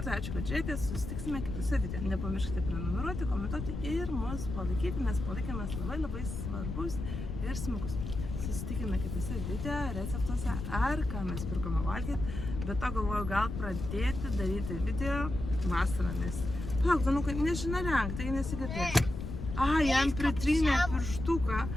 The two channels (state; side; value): noise; left; rumble, 6 dB below the sound